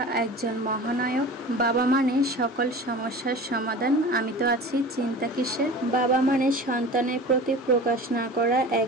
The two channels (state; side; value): normal; both; correlation 0.37